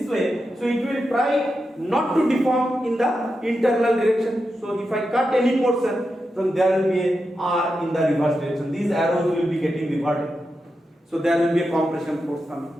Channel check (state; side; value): normal; both; correlation 0.88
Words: way, so it will try not to deform in the internal direction. So if I cut any portion, then there will be a R in the reverse direction. These arrows will be getting reverted. So there will be a compression force coming.